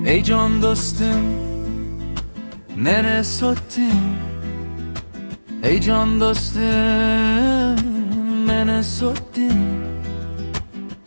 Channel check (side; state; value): both; inverted; correlation -1.00